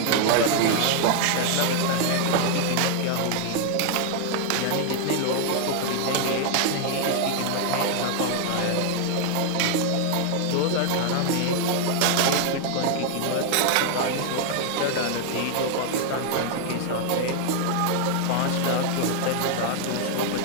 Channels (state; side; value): different; both; correlation 0.00